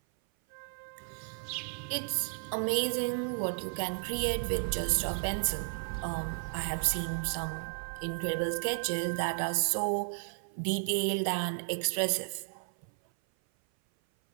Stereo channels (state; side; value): silent; left; 56 dB below the other